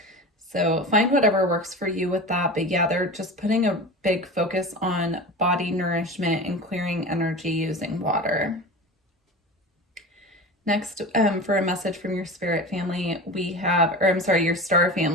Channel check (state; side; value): normal; both; correlation 0.31